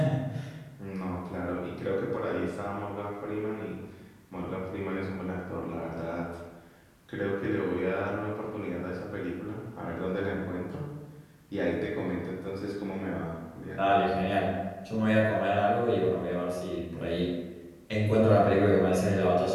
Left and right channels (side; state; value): both; identical; correlation 1.00